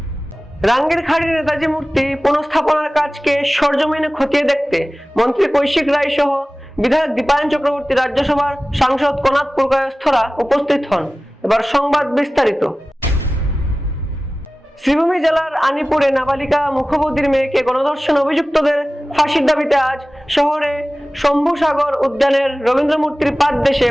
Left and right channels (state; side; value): normal; both; correlation 0.97